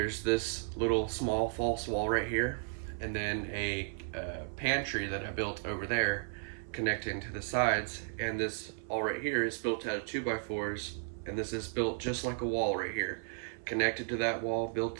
this little small false wall right here, and then a pantry that I built over there connecting to the sides, and this all right here is built out of 2x4s, and this is built just like a wall right here, connected to that wall,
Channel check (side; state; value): left; silent; 55 dB below the other